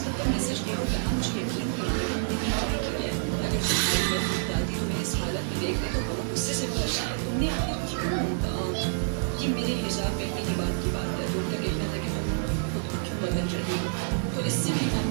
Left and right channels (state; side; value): silent; left; digital silence